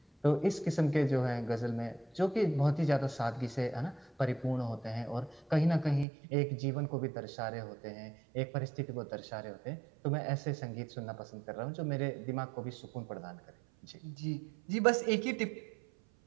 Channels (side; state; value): left; drops out; at 6.1 s